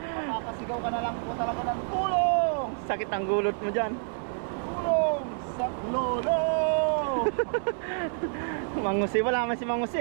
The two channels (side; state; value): left; silent; digital silence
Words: Makakasigaw ka na lang po talaga ng tulong! sakit ang gulot mo dyan. Tulong sa lolo! Mangusi, wala man si